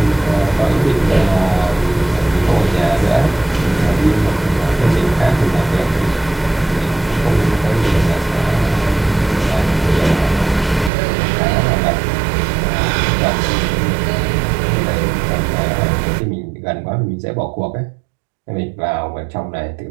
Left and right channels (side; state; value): left; drops out; at 10.9 s